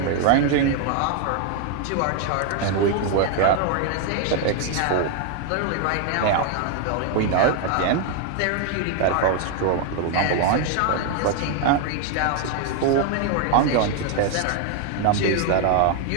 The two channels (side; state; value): both; different; correlation 0.01